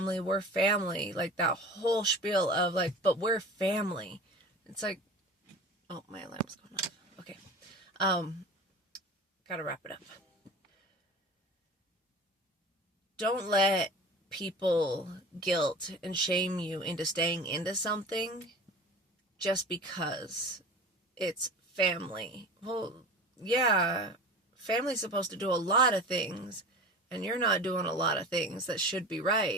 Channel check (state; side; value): normal; both; correlation 0.36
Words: we're family, like that whole spiel of like, but we're family. It's like, oh, my alarm's going off. Okay. Gotta wrap it up. Don't let people guilt and shame you into staying into something just because it's family. Well, yeah, family's supposed to do a lot of things, and you're not doing a lot of things that should be